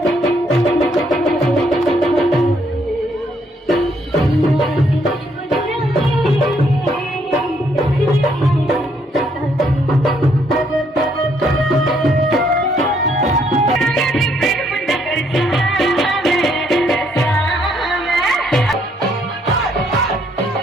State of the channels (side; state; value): both; normal; correlation 0.70